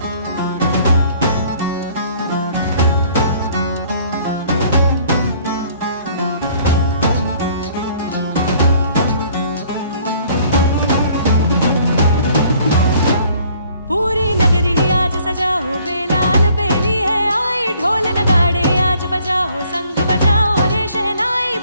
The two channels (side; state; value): both; inverted; correlation -0.58